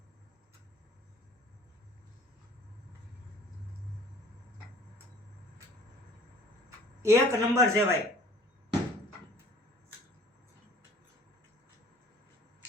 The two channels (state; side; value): normal; both; correlation 0.50